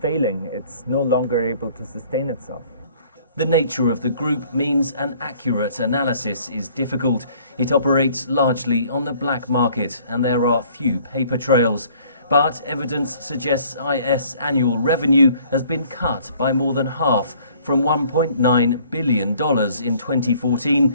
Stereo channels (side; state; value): both; inverted; correlation -0.57